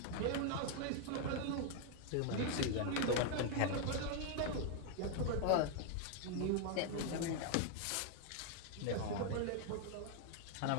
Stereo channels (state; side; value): different; both; correlation 0.00